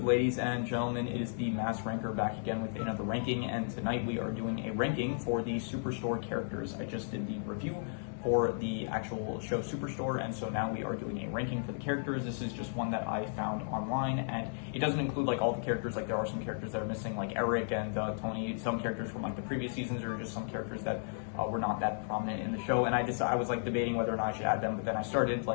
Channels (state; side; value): silent; right; digital silence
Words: ladies and gentlemen? It is the Mass Ranker back again with another ranking, and tonight we are doing a ranking for the Superstore characters. I just did the review for the actual show Superstore, and so now we are doing a ranking for the characters. This is just one that I found online, and it doesn't include like all the characters. Like there are some characters that are missing, like Eric and Tony, some characters from like the previous seasons, or just some characters that were not that prominent in the show. And I was like debating whether or not I should add them, but then I started